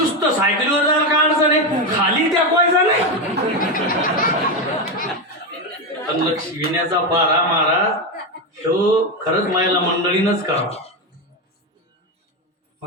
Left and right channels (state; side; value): normal; both; correlation 0.11